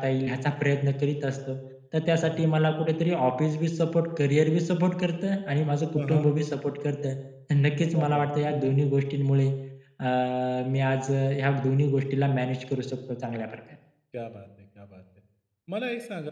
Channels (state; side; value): identical; both; correlation 1.00